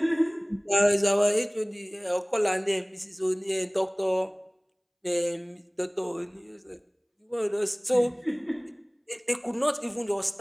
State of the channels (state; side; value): identical; both; correlation 1.00